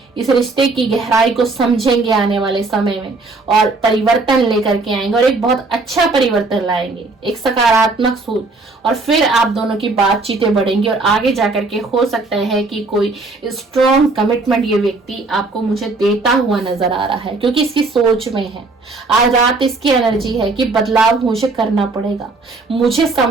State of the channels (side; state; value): left; quieter; 3.6 dB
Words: इस रिश्ते की गहराई को समझेंगे आने वाले समय में और परिवर्तन लेकर के आएंगे, और एक बहुत अच्छा परिवर्तन लाएंगे, एक सकारात्मक सोच। और फिर आप दोनों की बातचीतें बढ़ेंगी और आगे जाकर के हो सकता है कि कोई स्ट्रॉन्ग कमिटमेंट ये व्यक्ति आपको मुझे देता हुआ नजर आ रहा है, क्योंकि इसकी सोच में है। आज रात इसकी एनर्जी है कि बदलाव मुझे करना पड़ेगा, मुझे